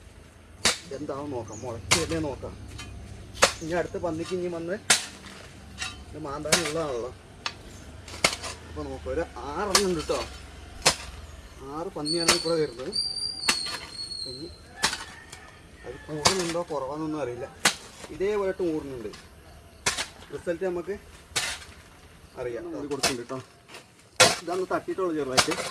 എന്താവും നോക്കാം, മുളച്ചല്ലേ നോക്കാം. ഇനി അടുത്ത പന്നിക്ക് ഇനി വന്ന് ഇത് മാന്താനുള്ളതാണല്ലോ. അപ്പോൾ നോക്കാം, ഒരു 6 ഉണ്ട് കേട്ടോ. 6 പന്നിയാണ് ഇവിടെ വരുന്നത്. ഇനി അത് കൂടുന്നുണ്ടോ കുറവാണെന്നൊന്നും അറിയില്ല. ഇതേപോലെ കൂടുന്നുണ്ട്. റിസൾട്ട് നമുക്ക് അറിയാം. അത് കൊടുക്കുന്നുണ്ട് കേട്ടോ. ഇതന്ന് തട്ടിയിട്ടുള്ളൂ ചെറുതായിട്ട്.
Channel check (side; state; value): both; identical; correlation 1.00